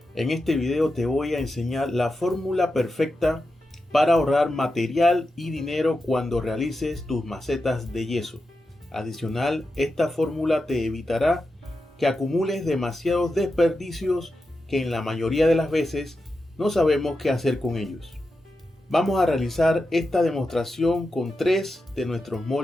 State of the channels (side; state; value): both; normal; correlation 0.89